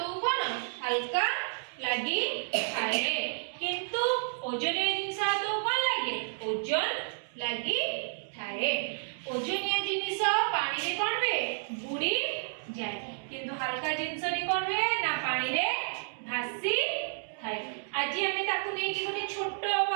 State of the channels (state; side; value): silent; left; digital silence